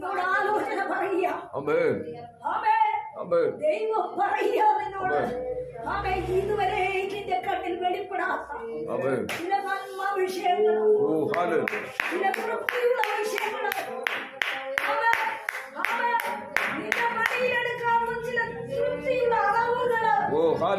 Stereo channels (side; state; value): both; identical; correlation 1.00